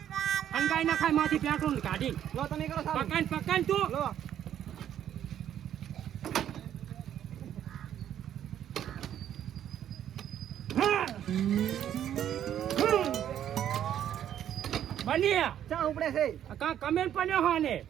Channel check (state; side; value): quieter; left; 10.4 dB